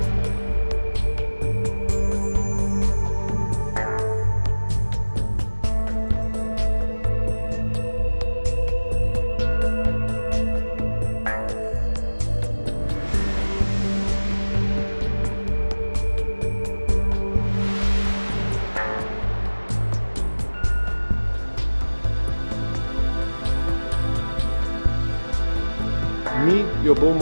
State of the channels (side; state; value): both; inverted; correlation -1.00